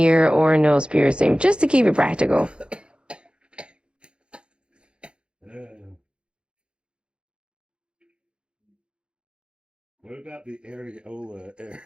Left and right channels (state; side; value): late; left; 0.055 ms